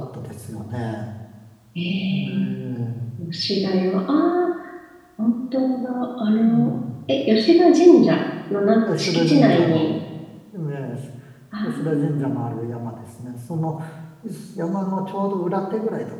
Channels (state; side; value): identical; both; correlation 1.00